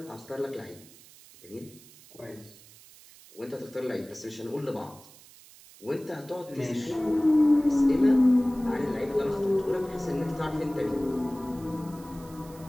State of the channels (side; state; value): right; noise; hiss, 22 dB below the sound